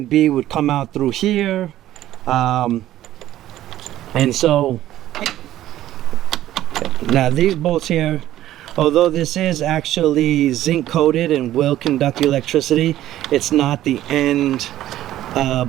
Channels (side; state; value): left; quieter; 13.5 dB